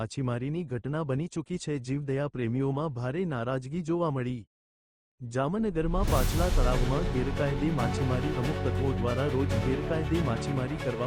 ઘટના બની ચૂકી છે। જીવદયા પ્રેમીઓમાં ભારે નારાજગી જોવા મળી। જામનગરમાં પાછલા તળાવમાં ગેરકાયદે માછીમારી અમુક તત્વો દ્વારા રોજ ગેરકાયદે માછીમારી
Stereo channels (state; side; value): identical; both; correlation 1.00